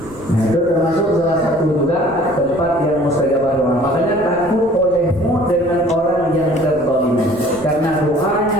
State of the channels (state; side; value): noise; left; rumble, 19 dB below the sound